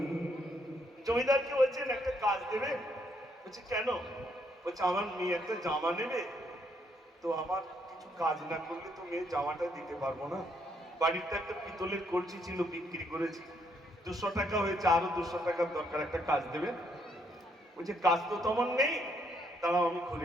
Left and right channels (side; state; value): both; normal; correlation 0.72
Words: জমিদারকে বলছেন একটা কাজ দেবে? বলছে কেন? বলছে আমার মেয়ে একটা জামা নেবে, তো আমার কিছু কাজ না করলে তো মেয়ে জামাটা দিতে পারবো না। বাড়িতে একটা পিতলের কলসি ছিল, বিক্রি করেছি, 200 টাকা হয়েছে, আরো 200 টাকার দরকার, একটা কাজ দেবে। বলছে কাজ তো তেমন নেই, দাঁড়াও আমি